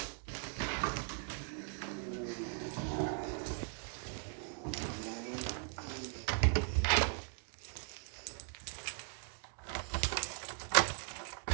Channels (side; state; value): left; silent; 52 dB below the other